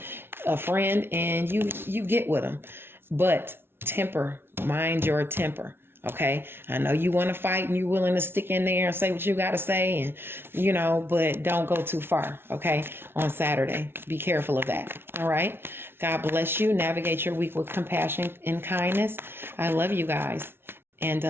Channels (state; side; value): late; left; 0.11 ms